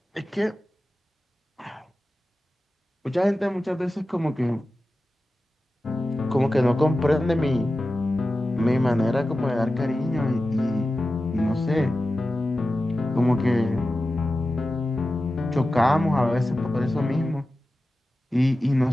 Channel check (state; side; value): normal; both; correlation 0.94